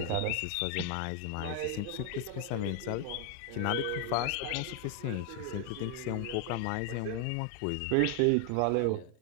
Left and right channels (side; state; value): both; different; correlation 0.00